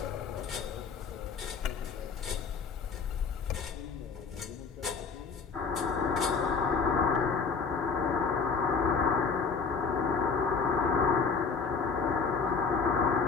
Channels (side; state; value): right; quieter; 5.3 dB